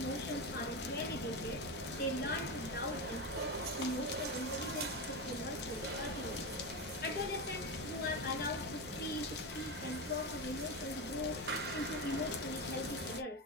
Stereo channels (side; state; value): both; normal; correlation 0.17